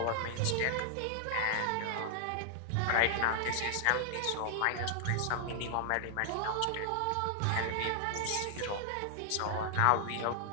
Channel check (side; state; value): both; different; correlation -0.01